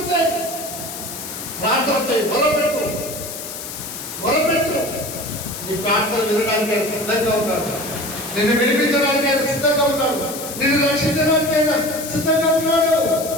చేయి. ప్రార్థన చేయి, మొరపెట్టు, మొరపెట్టు. నీ ప్రార్థన వినడానికి ఆయన సిద్ధంగా ఉన్నాడు. నిన్ను వినిపించడానికి ఆయన సిద్ధంగా ఉన్నాడు. నిన్ను రక్షించడానికి ఆయన సిద్ధంగా ఉన్నాడు.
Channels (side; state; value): left; noise; hiss, 9 dB below the sound